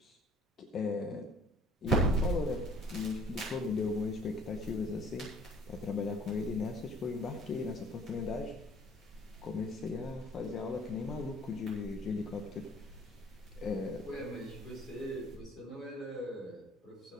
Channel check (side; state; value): both; normal; correlation 0.54